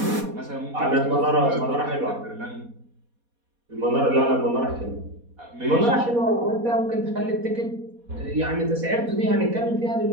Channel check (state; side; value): late; left; 4.2 ms